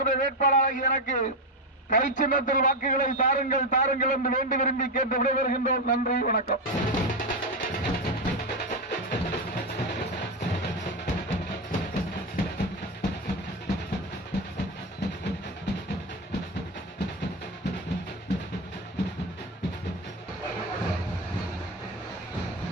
வேட்பாளராக எனக்கு கை சின்னத்தில் வாக்குகளை தாருங்கள் தாருங்கள் என்று வேண்டி விரும்பி கேட்டு விடைபெறுகின்றோம். நன்றி, வணக்கம்.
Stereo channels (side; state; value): both; normal; correlation 0.12